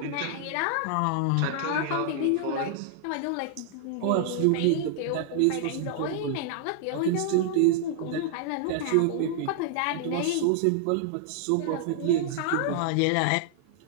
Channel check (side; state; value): both; different; correlation -0.01